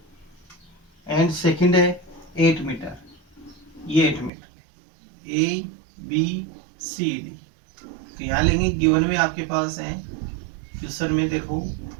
एंड सेकंड है 8 मीटर, ये 8 metre, A B C D. तो यहाँ लेंगे गिवन में आपके पास है क्वेश्चन में देखो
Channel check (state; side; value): drops out; left; at 4.3 s